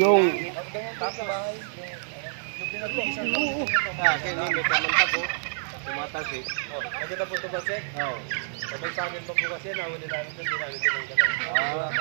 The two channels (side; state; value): left; silent; digital silence